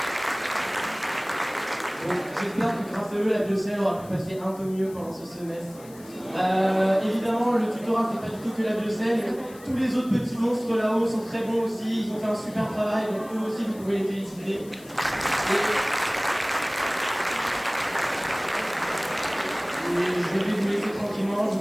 Donc j'espère que grâce à eux, la Bruxelles aura pu passer un peu mieux pendant ce semestre. Évidemment, le tutorat fait pas du tout que la Bruxelles. Tous les autres petits monstres là-haut sont très bons aussi, ils ont fait un super travail, donc eux aussi vous pouvez les féliciter. Et je vais vous laisser tranquillement, je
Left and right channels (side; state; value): left; noise; hiss, 22 dB below the sound